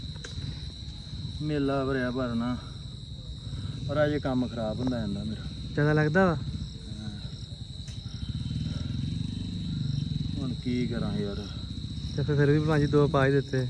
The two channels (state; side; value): identical; both; correlation 1.00